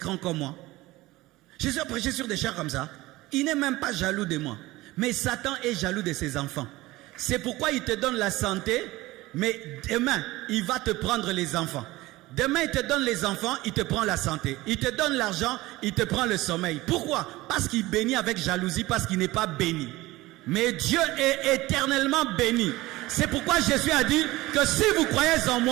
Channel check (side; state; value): left; quieter; 19.0 dB